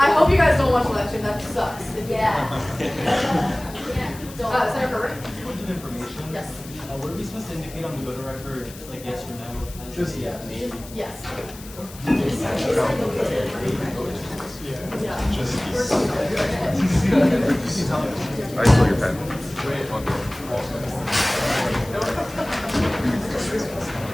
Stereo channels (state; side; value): noise; left; hiss, 17 dB below the sound